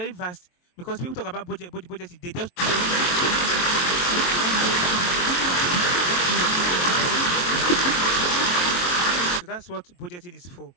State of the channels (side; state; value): right; late; 23 ms